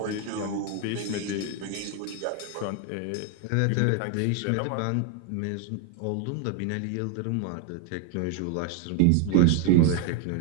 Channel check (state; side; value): different; both; correlation 0.01